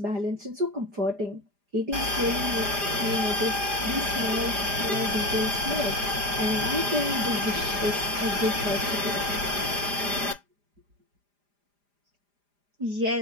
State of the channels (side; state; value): left; late; 4.9 ms